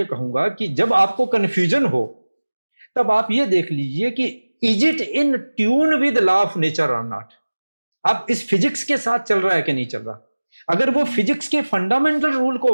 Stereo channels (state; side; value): inverted; both; correlation -1.00